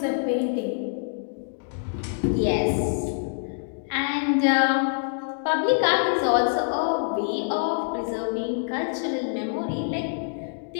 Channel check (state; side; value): silent; right; digital silence